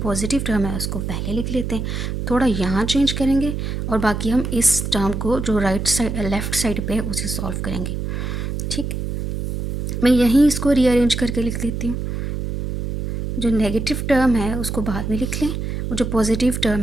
टर्म है उसको पहले लिख लेते हैं। थोड़ा यहाँ चेंज करेंगे और बाकी हम इस टर्म को जो राइट साइड लेफ़्ट साइड पे है उसे सॉल्व करेंगे। ठीक, मैं यहीं इसको रीअरेंज करके लिख लेती हूँ। जो नेगेटिव टर्म है उसको बाद में लिख लें, और जो पॉजिटिव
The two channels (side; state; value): right; noise; hum, 3 dB below the sound